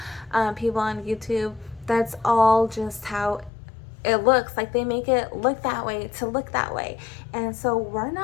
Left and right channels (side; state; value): right; drops out; at 3.5 s